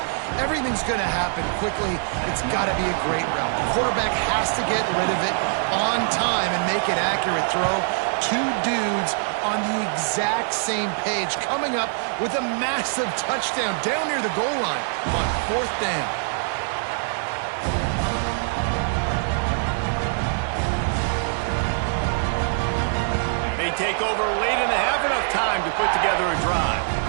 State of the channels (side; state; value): left; silent; 63 dB below the other